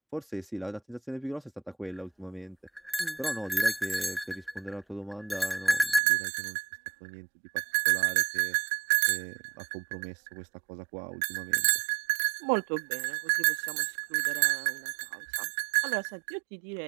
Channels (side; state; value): left; drops out; at 6.0 s